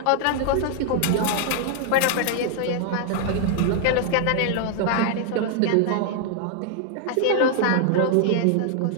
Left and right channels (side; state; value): both; different; correlation 0.00